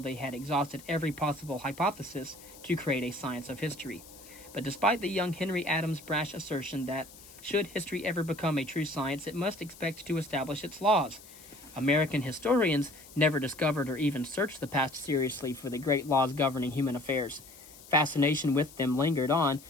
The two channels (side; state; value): left; noise; hiss, 20 dB below the sound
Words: had exhausted every possible hypothesis to create a science of history. But despite the young Henry Adams' brash assertion that, should history ever become a true science, it must expect to establish its laws, American historians never discovered or even searched the past seriously for the great laws governing human affairs. Fascination with them lingered on